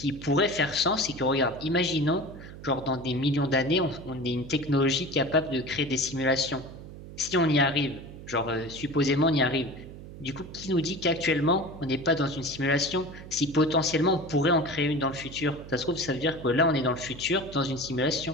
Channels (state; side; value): noise; right; hum, 14 dB below the sound